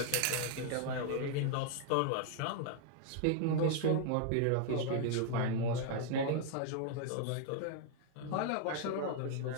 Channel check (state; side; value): different; both; correlation 0.00